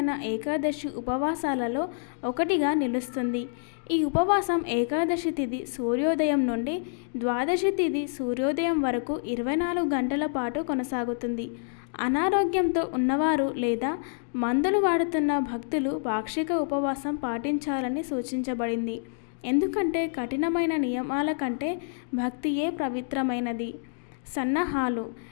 ఏకాదశి ఉపవాసాలలో ఒకటిగా నిలుస్తుంది. ఈ ఉపవాసం ఏకాదశి తిథి సూర్యోదయం నుండి ద్వాదశి తిథి సూర్యోదయం వరకు 24 గంటల పాటు కొనసాగుతుంది. అనారోగ్యంతో ఉన్నవారు లేదా మందులు వాడుతున్న భక్తులు పాక్షిక ఉపవాసం పాటించాలని సూచించబడింది. ఎందుకంటే కఠినమైన నియమాల కంటే భక్తియే పవిత్రమైనది. సన్నాహాలు.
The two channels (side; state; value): right; silent; digital silence